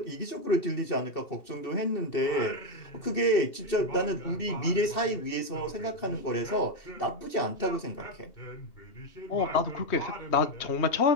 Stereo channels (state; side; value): late; right; 2.7 ms